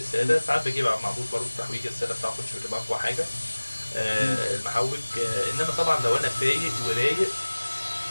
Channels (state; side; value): inverted; both; correlation -1.00